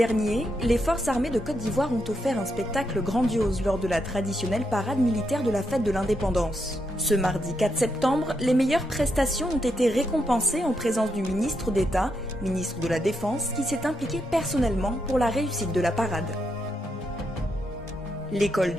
les forces armées de Côte d'Ivoire ont offert un spectacle grandiose lors de la traditionnelle parade militaire de la fête de l'indépendance. Ce mardi 4 septembre, les meilleures prestations ont été récompensées en présence du ministre d'État, ministre de la Défense, qui s'est impliqué personnellement pour la réussite de la parade. L'école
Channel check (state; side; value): normal; both; correlation 0.81